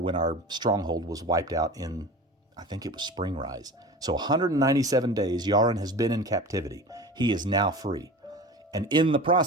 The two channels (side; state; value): both; normal; correlation 0.34